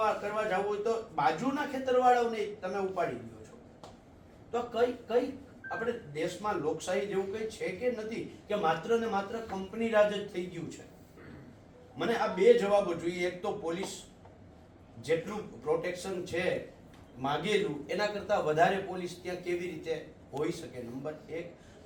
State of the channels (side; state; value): both; identical; correlation 1.00